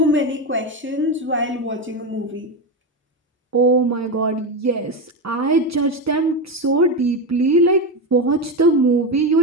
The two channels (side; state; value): both; normal; correlation 0.15